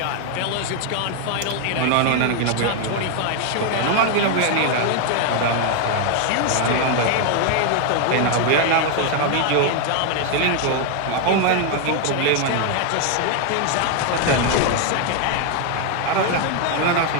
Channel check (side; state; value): both; different; correlation 0.00